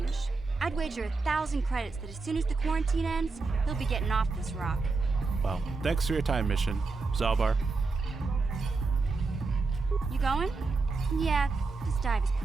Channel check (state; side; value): quieter; left; 4.0 dB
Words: I'd wager 1,000 credits that as soon as the quarantine ends, he'll be getting off this rock. Well, thanks for your time, Mission. Zalbar. You going? Yeah, this dive is